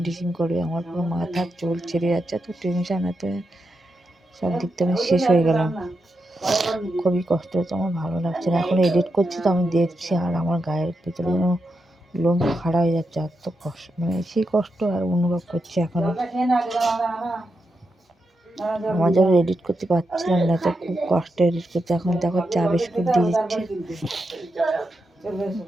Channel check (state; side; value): normal; both; correlation 0.86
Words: করবে। আমার পুরো মাথার চুল ছিঁড়ে যাচ্ছে, এত টেনশন, এত সব দিক থেকে আমি শেষ হয়ে গেলাম। খুবই কষ্ট হচ্ছে, আমার ভালো লাগছে না। এখন এডিট করছি তো আমি দেখছি, আর আমার গায়ের ভিতরে যেন লোম খাড়া হয়ে যাচ্ছে, এত কষ্ট, মানে সেই কষ্ট আর অনুভব করছি এখন। আমার যখন এডিট করতে পারছিলাম না, তো খুব কষ্ট এডিট করতে। এখন দেখো চা বিস্কুট দিয়ে দিচ্ছে।